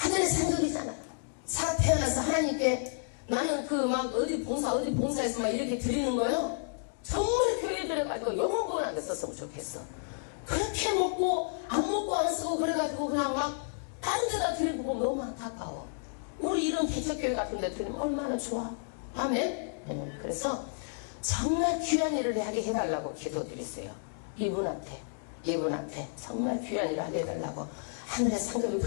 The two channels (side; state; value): right; silent; digital silence